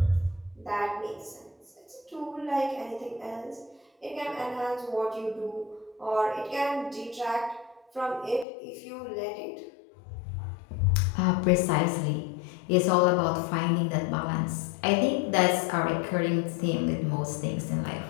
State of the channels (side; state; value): right; drops out; at 8.5 s